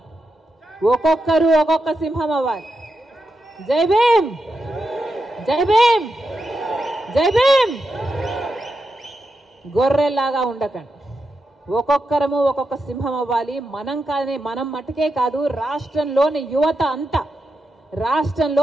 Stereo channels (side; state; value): both; normal; correlation 0.87